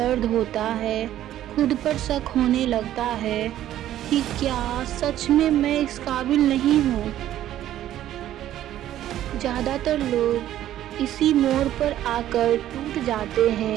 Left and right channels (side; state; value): left; quieter; 12.5 dB